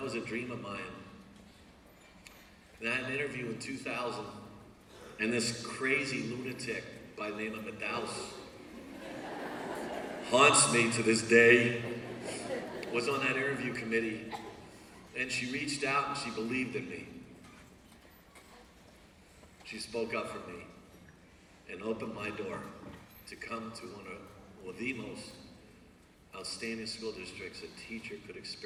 a dream of mine. And I had an interview in 2000, and this crazy lunatic by the name of Madaus haunts me to this day, was on that interview committee. And she reached out and she believed in me. She spoke up for me and opened my door to come to one of the most outstanding school districts a teacher could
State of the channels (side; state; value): both; identical; correlation 1.00